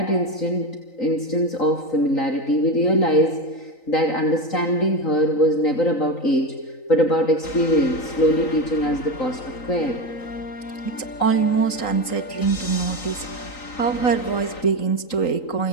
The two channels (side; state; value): right; late; 3.9 ms